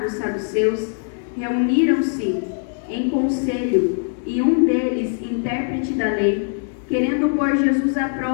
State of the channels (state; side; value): silent; right; digital silence